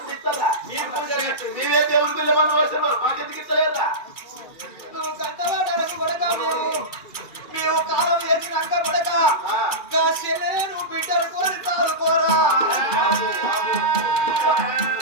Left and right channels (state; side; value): late; right; 2.4 ms